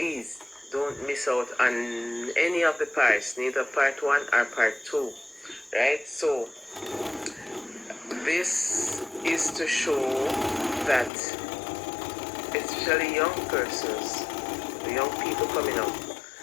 don't miss out on any of the parts, neither part one or part two, right? So this is to show that especially young persons, the young people coming up,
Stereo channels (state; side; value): drops out; right; at 11.1 s